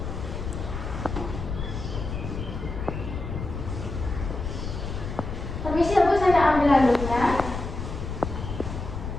permisi ya Bu, saya ambil handuknya.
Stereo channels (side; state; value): left; noise; rumble, 6 dB below the sound